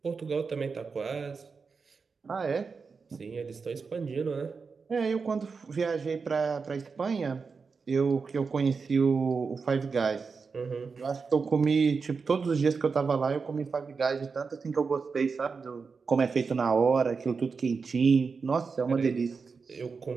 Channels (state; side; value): quieter; left; 5.0 dB